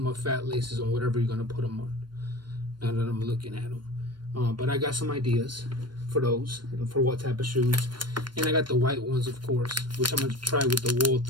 fat laces on whatever you're gonna put them on. Now that I'm looking at them, but I got some ideas for those and for what type of shoes, and I got the white ones, of course, which I'm gonna try with the wool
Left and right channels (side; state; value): left; late; 0.72 ms